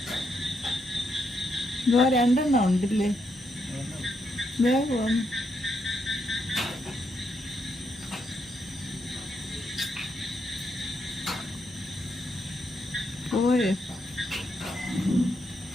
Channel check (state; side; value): normal; both; correlation 0.79